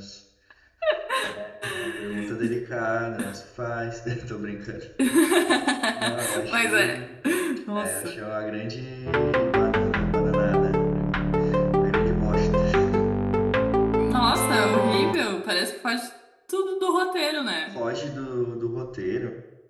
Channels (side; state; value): both; identical; correlation 1.00